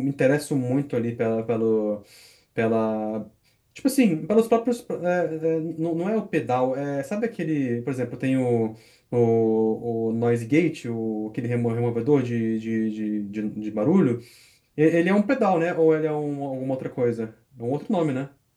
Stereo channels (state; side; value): identical; both; correlation 1.00